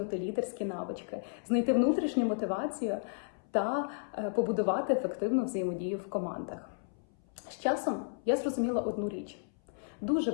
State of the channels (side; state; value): right; silent; 56 dB below the other